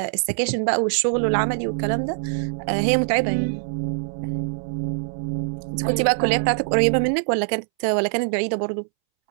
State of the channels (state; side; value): silent; left; 63 dB below the other